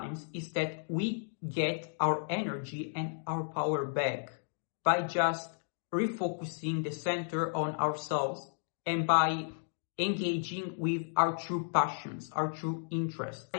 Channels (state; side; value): silent; right; digital silence